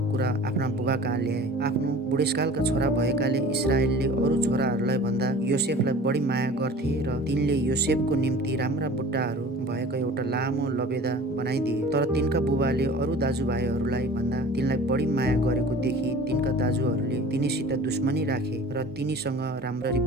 कुरा आफ्ना बुबा कहाँ ल्याए। आफ्नो बुढेसकालका छोरा भएकाले इस्राएलले अरू छोराहरूलाई भन्दा योसेफलाई बढी माया गर्थे र तिनले योसेफको निम्ति राम्रा बुट्टाहरू भएको एउटा लामो लबेदा बनाइदिए। तर तिनका बुबाले अरू दाजुभाइहरूलाई भन्दा तिनलाई बढी माया गरेको देखि तिनका दाजुहरूले तिनीसित दुश्मनी राखे र तिनीसँग राम्ररी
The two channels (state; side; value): normal; both; correlation 0.42